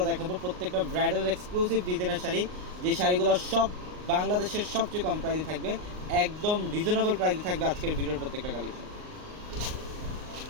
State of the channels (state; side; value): late; left; 38 ms